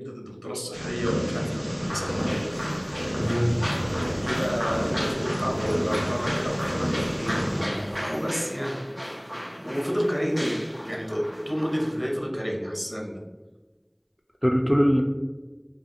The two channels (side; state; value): both; identical; correlation 1.00